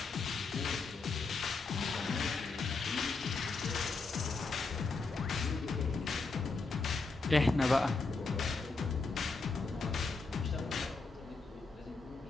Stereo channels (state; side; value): quieter; right; 4.0 dB